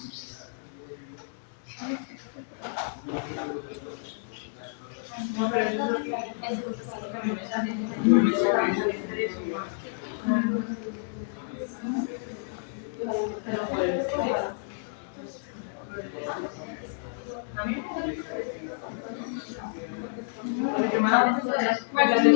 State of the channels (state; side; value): silent; right; digital silence